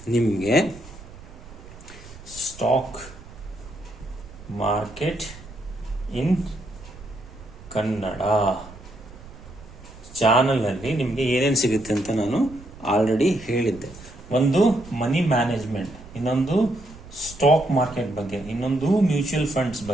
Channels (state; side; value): noise; right; rumble, 18 dB below the sound